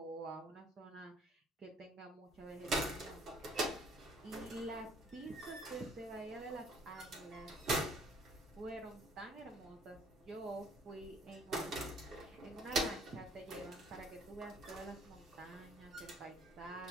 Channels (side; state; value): both; normal; correlation 0.58